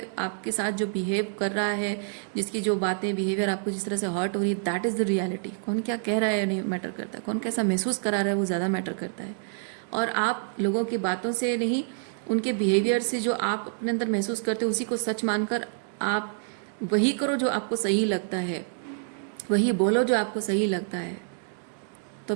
आपके साथ जो बिहेव कर रहा है, जिसकी जो बातें, बिहेवियर आपको जिस तरह से हर्ट हो रही है, दैट इज़ द रियलिटी। कौन क्या कह रहा है नहीं मैटर करता, कौन कैसा महसूस करा रहा है वो ज़्यादा मैटर करता है। और आप लोगों की बातों से नहीं, उनके बिहेवियर से जो आप अपने अंदर महसूस करते हो उसी को सच मानकर आप वही करो जो आपको सही लगता है, वही बोलो जो आपको सही लगता है।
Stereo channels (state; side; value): silent; left; digital silence